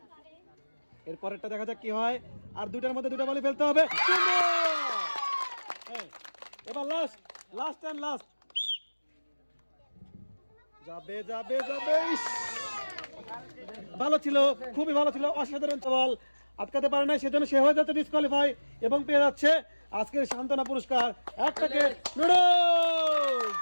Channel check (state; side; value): inverted; both; correlation -1.00